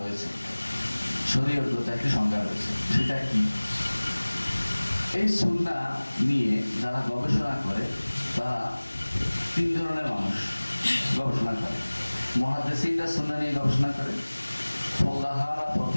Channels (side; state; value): both; inverted; correlation -1.00